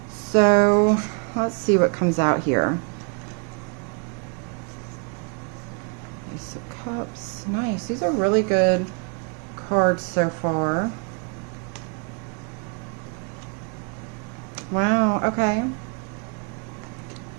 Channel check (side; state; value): left; quieter; 36.7 dB